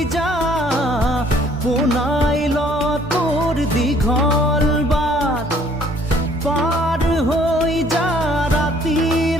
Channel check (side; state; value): both; normal; correlation 0.59